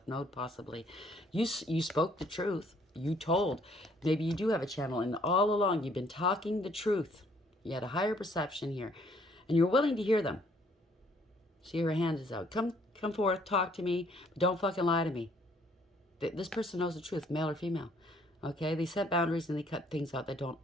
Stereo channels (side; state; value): both; normal; correlation 0.64